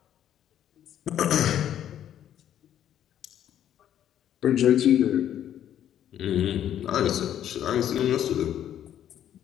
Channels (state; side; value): quieter; right; 10.6 dB